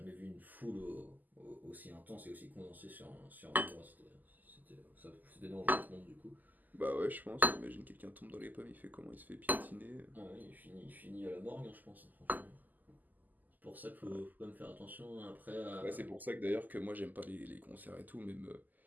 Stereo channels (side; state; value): left; late; 0.083 ms